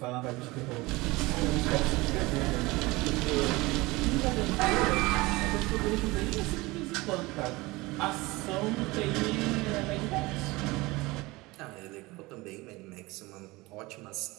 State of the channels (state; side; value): quieter; left; 21.9 dB